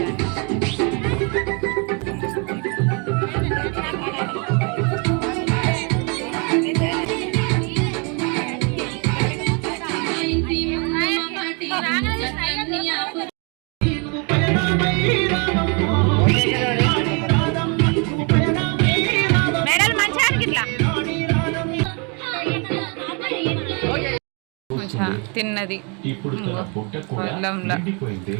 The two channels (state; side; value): quieter; left; 33.9 dB